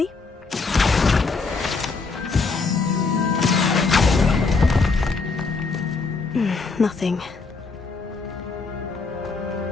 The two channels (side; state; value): right; quieter; 4.3 dB